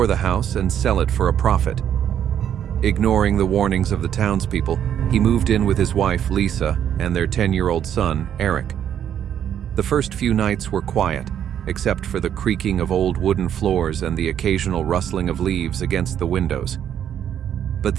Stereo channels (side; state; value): left; quieter; 9.6 dB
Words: the house and sell it for a profit. Ignoring the warnings of the townspeople, he moved in with his wife, Lisa, and their 10-year-old son, Eric. The first few nights were quiet, except for the creaking of old wooden floors and the occasional rustling of leaves against the windows. But